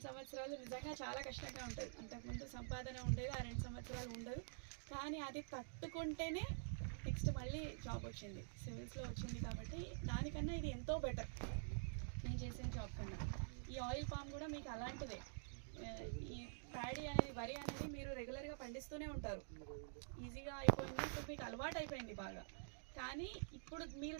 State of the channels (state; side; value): silent; left; digital silence